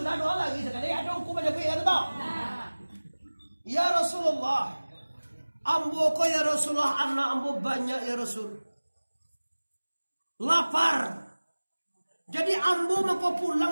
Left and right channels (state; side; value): inverted; both; correlation -1.00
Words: sudah doa lagi sekali adungku banyak ya tahu. Ya Rasulullah. Ambo ko ya Rasulullah, anak ambo banyak ya Rasul. Lapar. Jadi ambo mau pulang